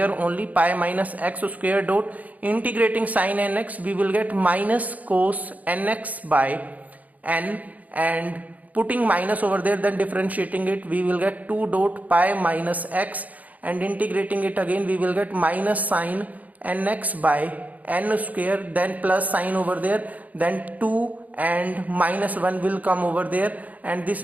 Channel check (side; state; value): left; late; 0.075 ms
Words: only, pi minus x square dot integrating sin nx, we will get minus cos nx by n, and putting minus over there, then differentiating it, we will get 2 dot pi minus x, and integrating it again, we will get minus sin nx by n square, then plus sign over there, then 2 and minus 1 will come over there, and this